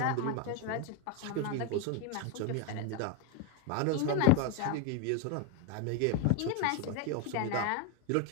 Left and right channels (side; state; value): both; different; correlation 0.02